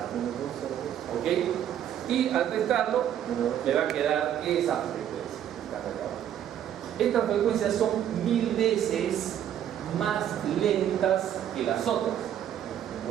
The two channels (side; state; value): left; quieter; 10.3 dB